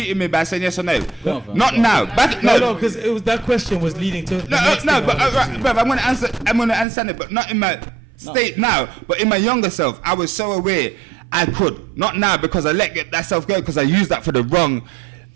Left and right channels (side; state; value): left; drops out; at 6.9 s